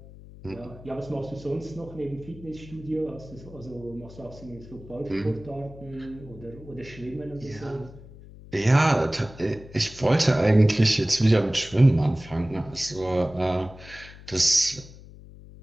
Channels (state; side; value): noise; left; hum, 18 dB below the sound